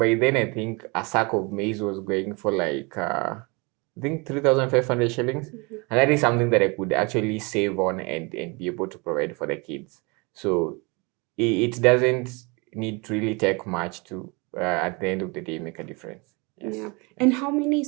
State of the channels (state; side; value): quieter; left; 28.7 dB